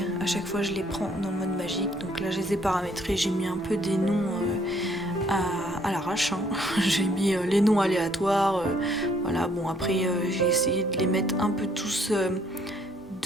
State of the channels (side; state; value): both; normal; correlation 0.65